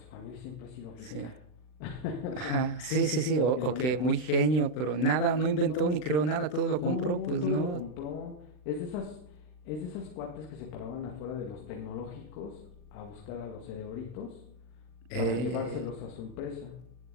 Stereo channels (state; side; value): late; right; 39 ms